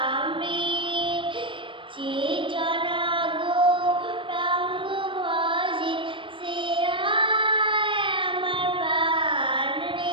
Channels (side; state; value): left; late; 0.25 ms